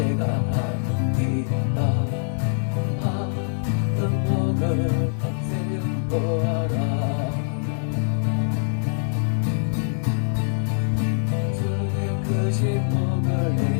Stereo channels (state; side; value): silent; right; digital silence